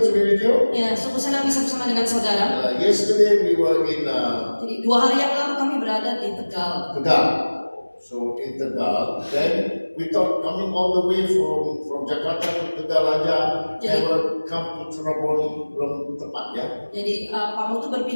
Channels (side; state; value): both; inverted; correlation -1.00